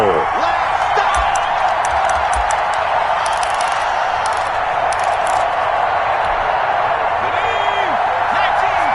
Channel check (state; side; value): identical; both; correlation 1.00